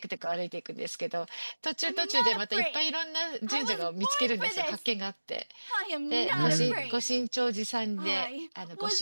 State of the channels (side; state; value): both; inverted; correlation -1.00